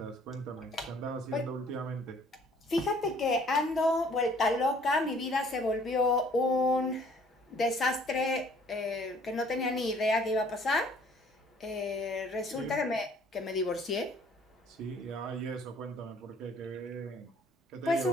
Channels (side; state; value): both; normal; correlation 0.58